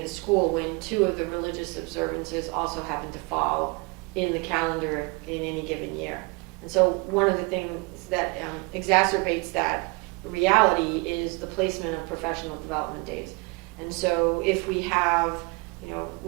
the school, when 2 of the religious observances also happen to fall in the calendar in any given year. And so one of the things that exacerbates that reality is the placement of professional development days. And so if we have,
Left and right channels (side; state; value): left; quieter; 29.7 dB